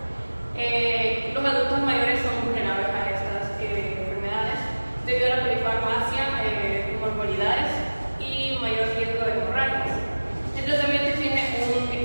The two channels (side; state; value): both; inverted; correlation -1.00